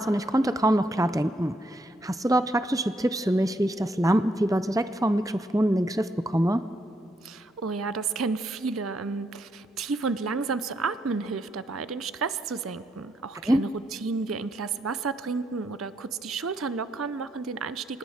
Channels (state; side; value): normal; both; correlation 0.76